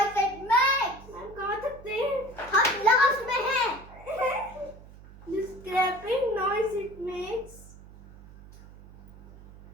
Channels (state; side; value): noise; right; hum, 20 dB below the sound